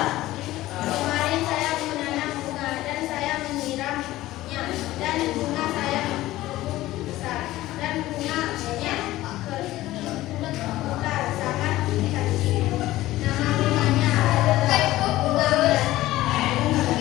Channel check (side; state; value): right; quieter; 16.4 dB